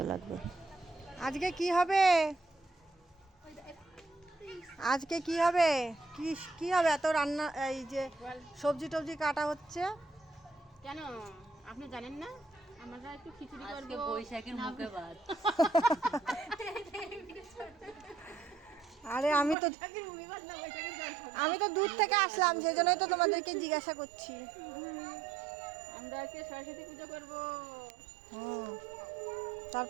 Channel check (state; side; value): drops out; left; at 19.6 s